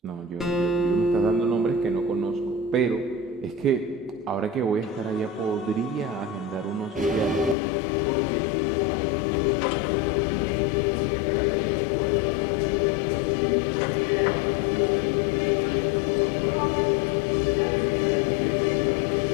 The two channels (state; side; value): drops out; right; at 7.6 s